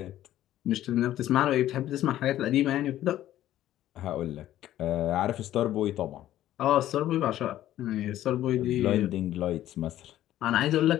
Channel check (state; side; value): quieter; right; 13.2 dB